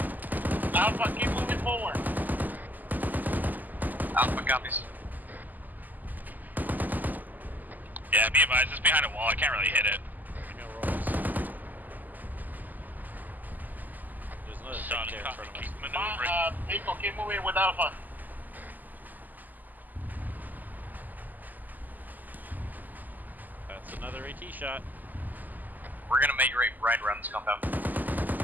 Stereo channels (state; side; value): late; left; 0.084 ms